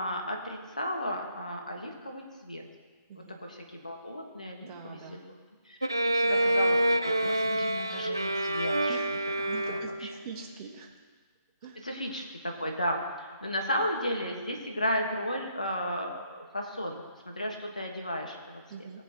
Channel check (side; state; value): both; inverted; correlation -0.78